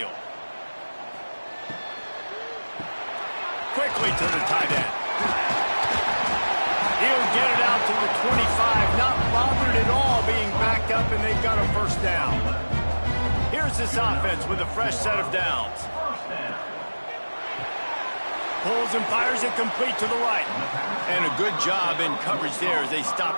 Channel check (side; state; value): both; inverted; correlation -1.00